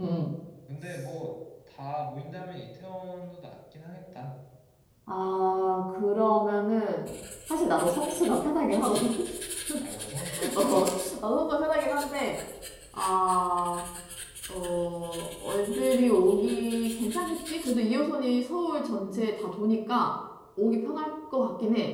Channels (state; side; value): identical; both; correlation 1.00